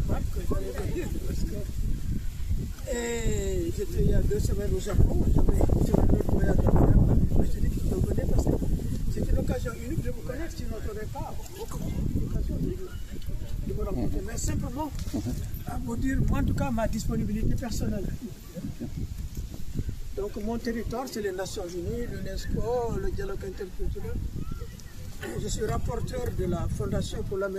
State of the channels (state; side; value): identical; both; correlation 1.00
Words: Pape que j'allais venir parce que j'étais il y a 2 semaines au Japon, j'avais sur un autre voyage à faire, mais je dis que je venais parce que c'était l'occasion unique de vous connaître, sinon je n'aurais pas l'occasion de vous rencontrer. Mais simplement à vous dire, moi en tout cas, ma disponibilité personnelle. Donc mon territoire, c'est les Nations Unies, l'UNESCO, le dialogue interculturel. Je suis rapporteur de la Fondation pour la